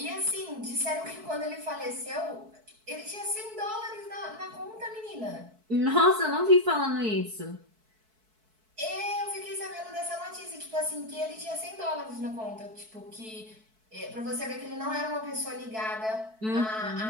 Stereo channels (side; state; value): left; late; 4.6 ms